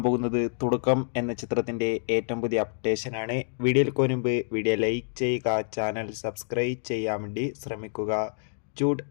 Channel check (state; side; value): silent; right; digital silence